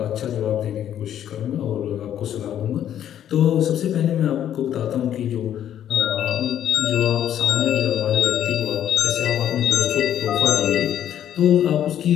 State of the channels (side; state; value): right; quieter; 10.5 dB